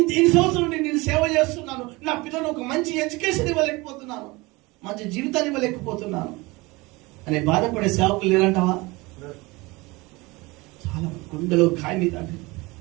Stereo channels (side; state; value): left; quieter; 23.3 dB